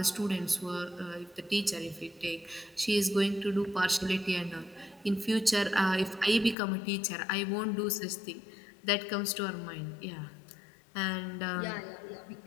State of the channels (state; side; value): drops out; right; at 6.6 s